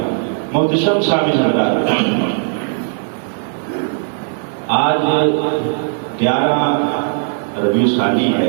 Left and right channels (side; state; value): left; silent; digital silence